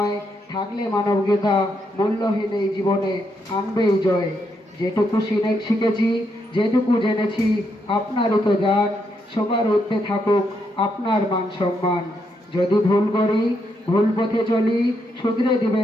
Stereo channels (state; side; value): normal; both; correlation 0.79